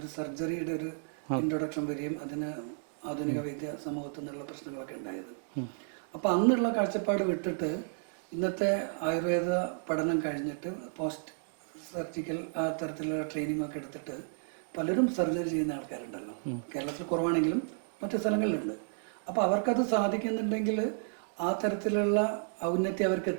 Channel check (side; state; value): left; silent; digital silence